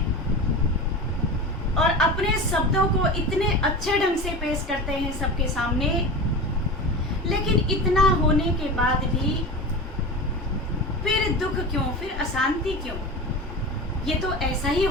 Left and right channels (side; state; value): both; normal; correlation 0.29